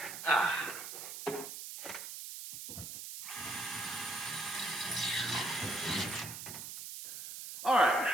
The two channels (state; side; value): noise; right; hiss, 9 dB below the sound